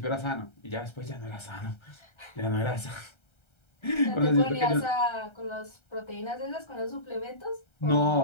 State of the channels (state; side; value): late; right; 1.3 ms